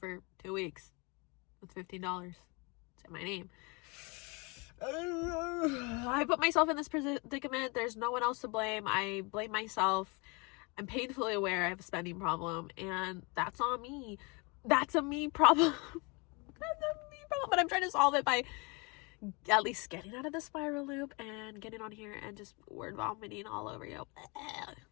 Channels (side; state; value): right; quieter; 29.4 dB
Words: 2 weeks with $15 to my name. I put myself in this predicament. There's no one else to blame. I blame myself. I'm painfully aware I have a spending problem, and that's on me. That's a me problem. That's a me problem. But I'm trying to solve it by at least getting out of the spiral loop and getting on here and just word vomiting all over you.